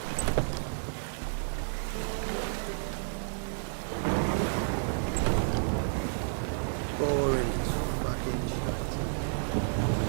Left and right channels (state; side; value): silent; left; 57 dB below the other